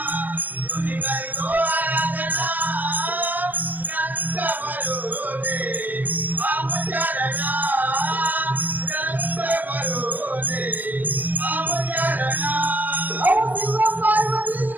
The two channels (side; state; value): left; late; 0.087 ms